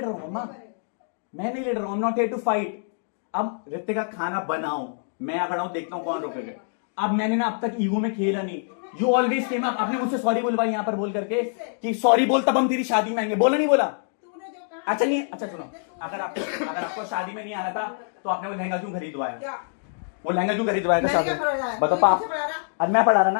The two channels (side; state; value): right; silent; digital silence